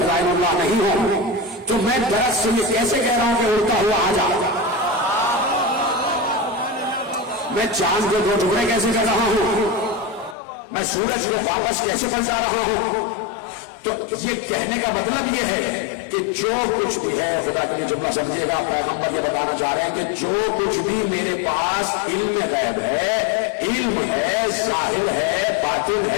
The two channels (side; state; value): right; drops out; at 10.4 s